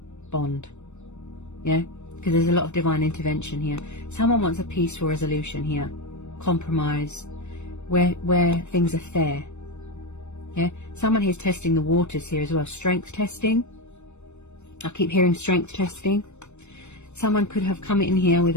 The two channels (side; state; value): right; late; 0.82 ms